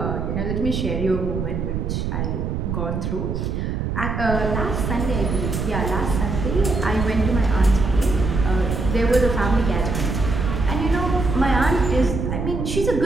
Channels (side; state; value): right; noise; rumble, 2 dB below the sound